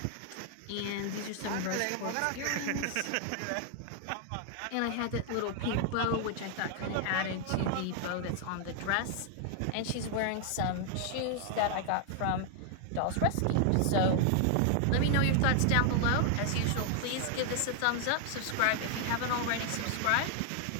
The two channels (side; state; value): both; different; correlation 0.00